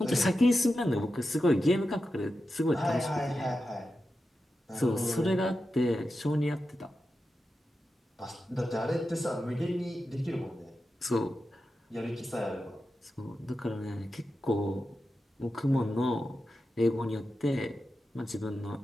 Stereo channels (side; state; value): both; normal; correlation 0.91